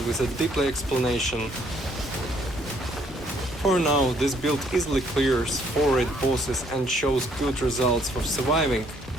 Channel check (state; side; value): normal; both; correlation 0.66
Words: with a deeply explanation. For now, this build easily clears 4 raid bosses and shows good results for surviving,